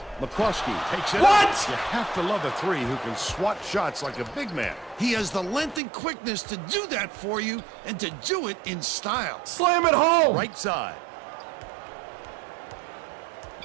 McCroskey takes it What? up. You have to love a three who can swat shots like a big man. He has the length and quickness to do that for you and to do it in style. Slam it home! Right side.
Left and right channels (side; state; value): left; drops out; at 5.8 s